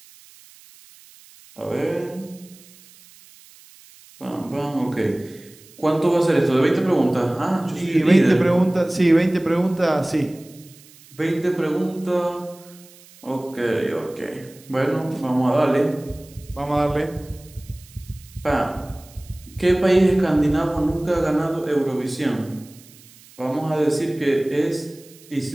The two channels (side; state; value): right; noise; hiss, 24 dB below the sound